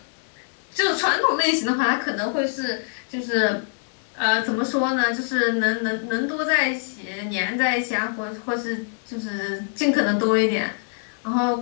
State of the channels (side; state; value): right; silent; 58 dB below the other